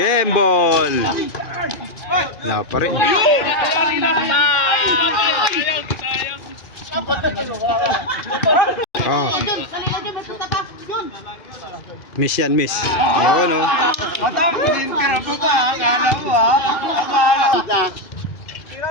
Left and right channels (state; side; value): late; right; 2.5 ms